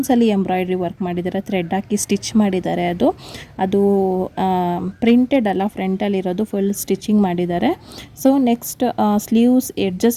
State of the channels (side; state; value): both; identical; correlation 1.00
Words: ಎಂಬ್ರಾಯ್ಡ್ರಿ ವರ್ಕ್ ಮಾಡಿದ್ದಾರೆ, ಥ್ರೆಡ್ ಹಾಕಿ ಸ್ಟಿಚ್ ಮಾಡಿದ್ದಾರೆ. ಅದು ಪ್ರಿಂಟೆಡ್ ಅಲ್ಲ, ಫ್ರಂಟಲ್ಲಿರೋದು ಫುಲ್ ಸ್ಟಿಚಿಂಗ್ ಮಾಡಿದ್ದಾರೆ. ಸೊ ನೆಕ್ಸ್ಟ್ ಸ್ಲೀವ್ಸ್